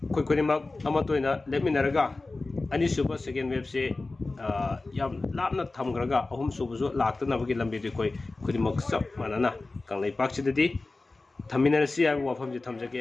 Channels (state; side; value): quieter; right; 3.4 dB